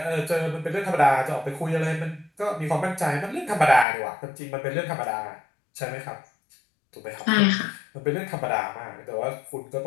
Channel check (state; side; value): drops out; right; at 3.9 s